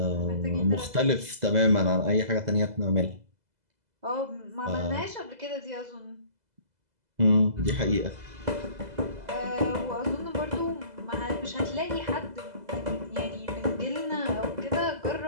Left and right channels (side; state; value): left; late; 2.0 ms